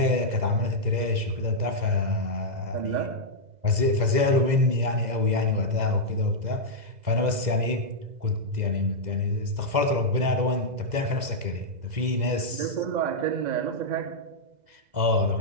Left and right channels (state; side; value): late; left; 2.0 ms